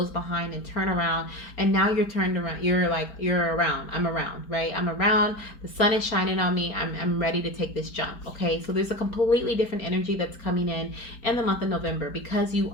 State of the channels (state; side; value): late; right; 4.3 ms